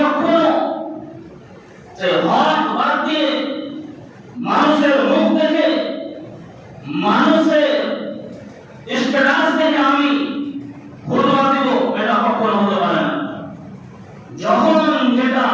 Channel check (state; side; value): identical; both; correlation 1.00